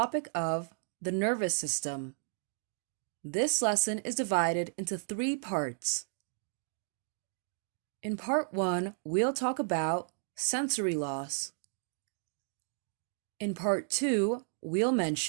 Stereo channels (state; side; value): silent; left; digital silence